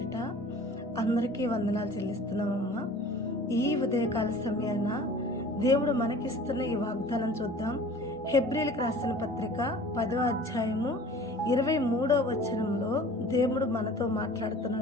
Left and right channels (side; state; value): both; normal; correlation 0.45